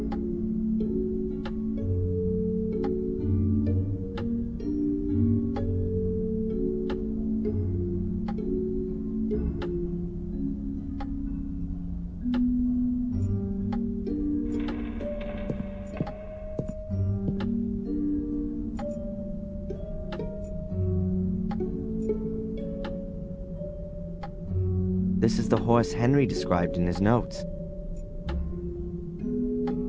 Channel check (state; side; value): identical; both; correlation 1.00